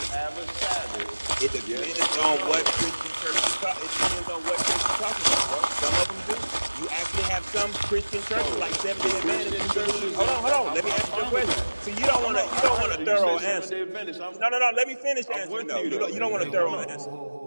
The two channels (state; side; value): inverted; both; correlation -1.00